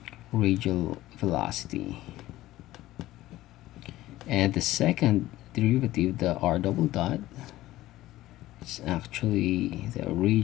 velocity. And the second derivative, the r double dot, is actually the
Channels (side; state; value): right; quieter; 16.0 dB